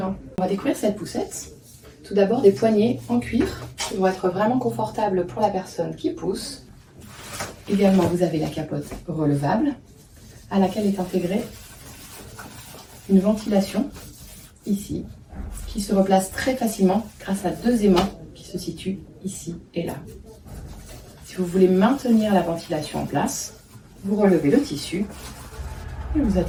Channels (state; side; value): identical; both; correlation 1.00